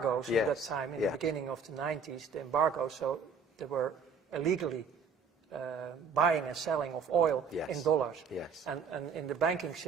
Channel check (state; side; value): quieter; left; 5.1 dB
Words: at that time, in the beginning of the 90s, the embargoes, so they were illegally buying and selling of oil in dollars. Yes. And in the banking